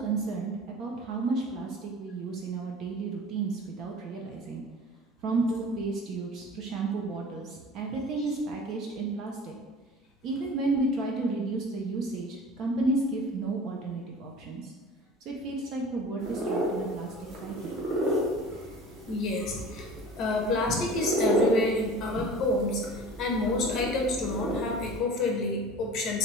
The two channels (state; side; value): normal; both; correlation 0.41